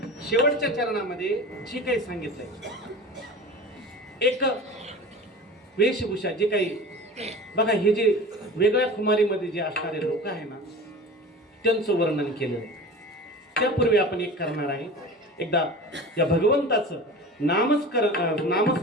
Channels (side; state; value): both; normal; correlation 0.35